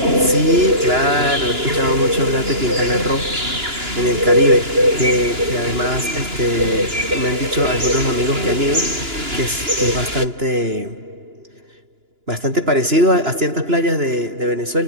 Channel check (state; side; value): late; left; 2.9 ms